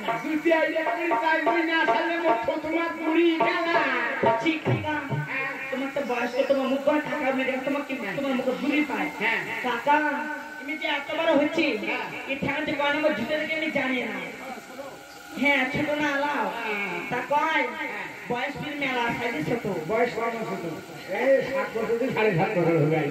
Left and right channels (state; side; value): identical; both; correlation 1.00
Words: জুতি আইলে করি তাই বই না আসলে মুখ তোমার পুরি গেলা ঠিক কাকা তোমার তো বয়স তো তোমার মুখ করে টাকা মেরে তোমার কি তোমার মুখে ভুলি পায় হ্যাঁ কাকা তুমি যে এত বড় হচ্ছি এই ঠ্যাংতে কয় নম্বর জুতে থেকে আমি জানি না হ্যাঁ ছোট না আলাও তা কয় বয়স ফির মেলা সাইডে ছোট বয়স কত ছোট এই 7 বছর থেকে 7.5 বছর হবে